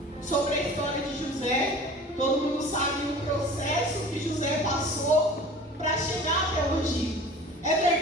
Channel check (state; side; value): normal; both; correlation 0.42